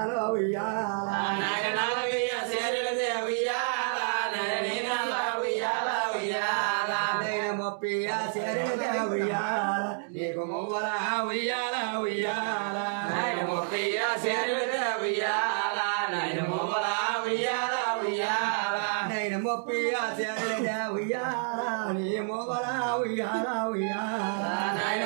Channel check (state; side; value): silent; left; digital silence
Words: ఉయ్యాల నైన నలభై ఆశర్యల దేవయ్యాల నైన నీ నల్ల ఉయ్యాల ఉయ్యాల నైన ముప్పై ఆశర్యల దేవయ్యాల నీకు మువ్వల ఉయ్యాల ఉయ్యాల నైన ముప్పై ఆశర్యల దేవయ్యాల నైన మువ్వల ఉయ్యాల ఉయ్యాల నైన ముప్పై ఆశర్యల దేవయ్యాల నీ మువ్వల ఉయ్యాల ఉయ్యాల నైన